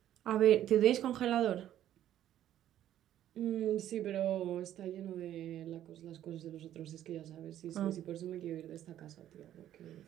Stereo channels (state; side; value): quieter; left; 11.8 dB